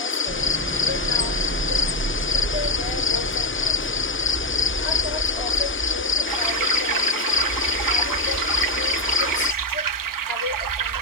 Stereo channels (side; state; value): both; normal; correlation 0.05